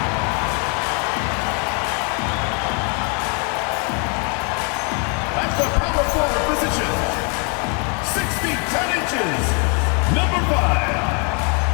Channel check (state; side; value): quieter; right; 36.5 dB